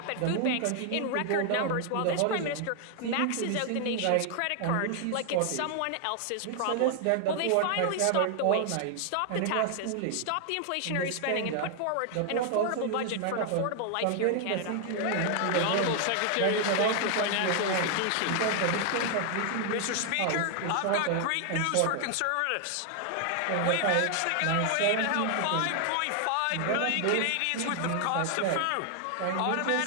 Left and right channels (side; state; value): both; different; correlation 0.00